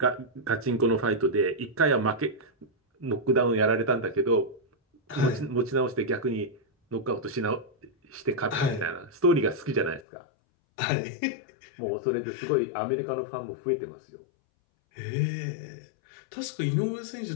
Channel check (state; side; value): drops out; right; at 10.0 s